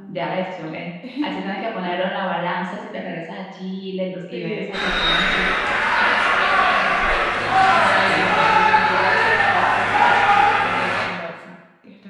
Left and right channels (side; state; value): both; identical; correlation 1.00